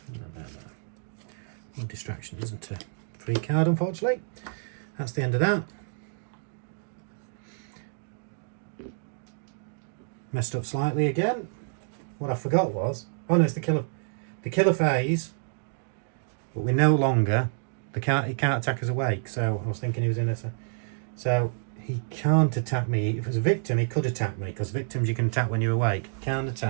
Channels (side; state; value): left; silent; digital silence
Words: No distraction isn't a free card, unfortunately. That's the end of that. Messed up slightly again. What I forgot was, oh no, it's the killer phase, but we're no longer, he can't attack us awake, so I was thinking he was in a, so he can't attack me. If it was a victim, he could attack me, because victims you can attack when you're awake. He can't